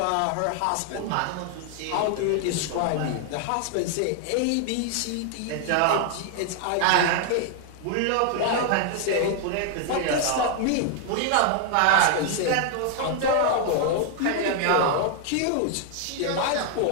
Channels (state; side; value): different; both; correlation 0.00